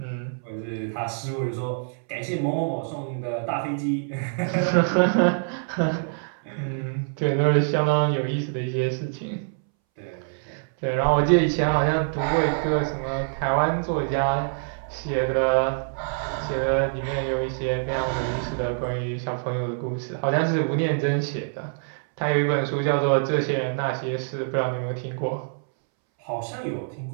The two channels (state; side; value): silent; left; 61 dB below the other